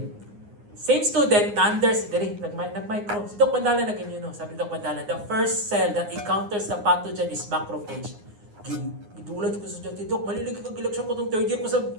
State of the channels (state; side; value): late; left; 9.6 ms